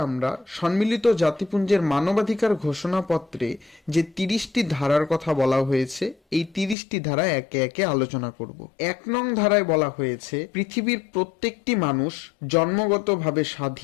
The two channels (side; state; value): right; drops out; at 6.8 s